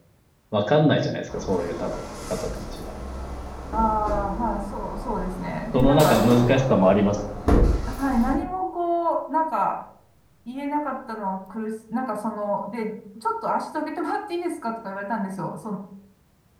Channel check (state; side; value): identical; both; correlation 1.00